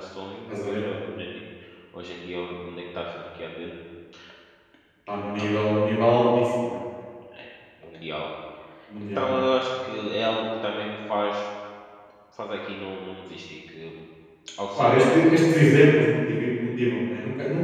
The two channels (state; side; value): identical; both; correlation 1.00